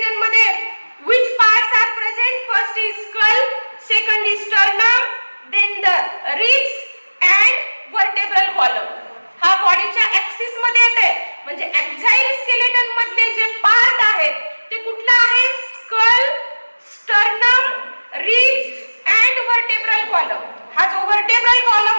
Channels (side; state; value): both; inverted; correlation -1.00